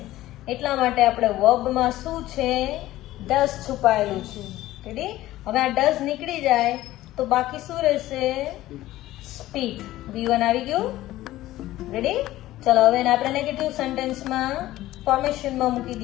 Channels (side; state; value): right; quieter; 15.7 dB